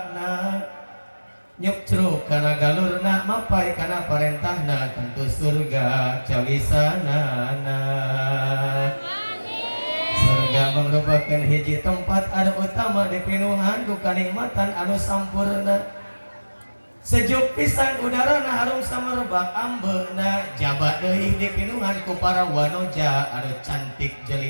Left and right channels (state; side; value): inverted; both; correlation -1.00